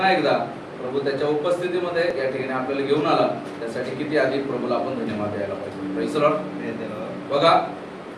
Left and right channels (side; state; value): both; identical; correlation 1.00